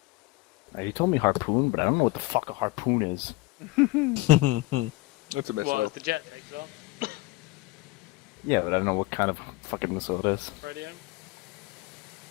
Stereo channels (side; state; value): right; quieter; 20.4 dB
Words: He told me Harpoon, but I don't know what the fuck a Harpoon is. That's a missile. Well, as the jet takes off. Yeah, but I don't know what kind of fucking missile it is. Radio.